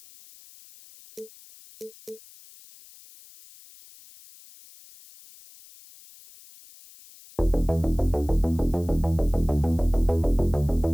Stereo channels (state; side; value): noise; left; hiss, 23 dB below the sound